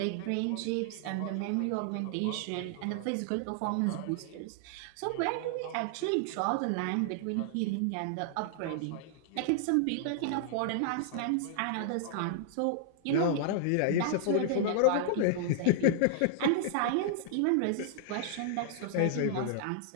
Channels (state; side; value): different; both; correlation -0.01